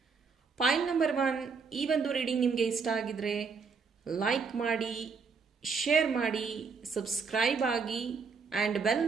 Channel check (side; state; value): left; quieter; 5.2 dB